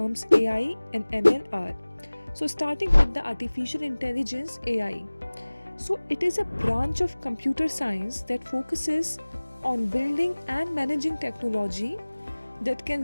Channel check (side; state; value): both; inverted; correlation -1.00